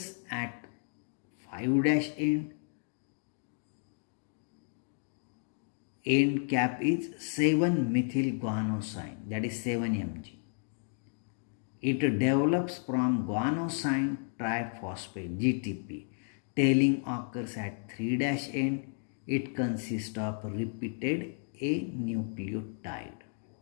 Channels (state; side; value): silent; right; 55 dB below the other